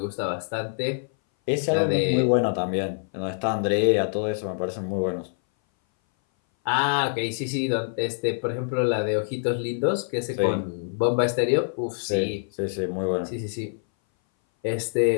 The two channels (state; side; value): silent; right; 59 dB below the other